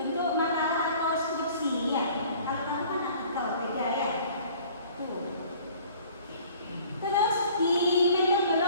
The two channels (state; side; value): inverted; both; correlation -0.51